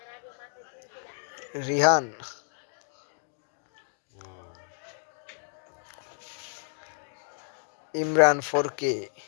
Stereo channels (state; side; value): silent; right; digital silence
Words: Rihan Imran 4K